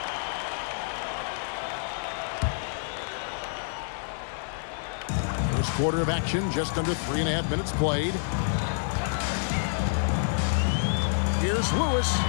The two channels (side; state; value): right; silent; 59 dB below the other